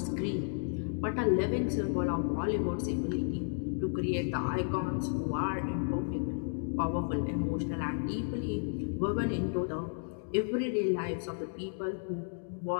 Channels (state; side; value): silent; right; digital silence